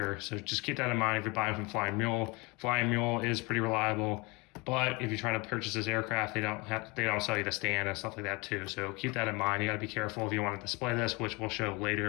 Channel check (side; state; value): right; quieter; 26.6 dB